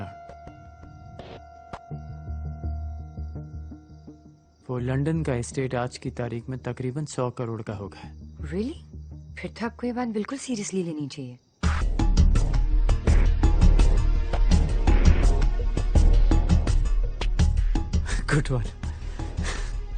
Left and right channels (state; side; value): identical; both; correlation 1.00